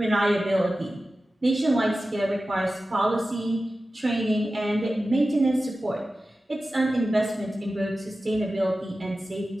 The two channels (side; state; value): both; normal; correlation 0.94